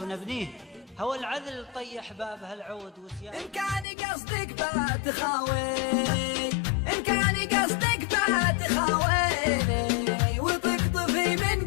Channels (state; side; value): drops out; right; at 3.9 s